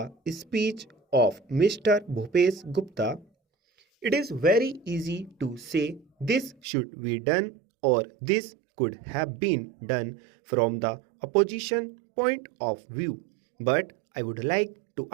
speech of Mr. Bhupesh Gupta. It is very easy to say this should be done or this could have been done from the opposition point of view. But I would like to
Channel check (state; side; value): drops out; left; at 6.6 s